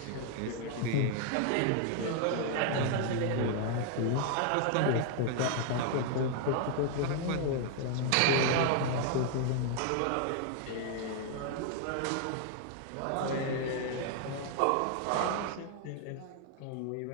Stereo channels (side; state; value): both; different; correlation 0.00